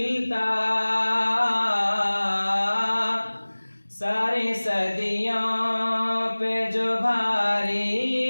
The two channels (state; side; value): inverted; both; correlation -1.00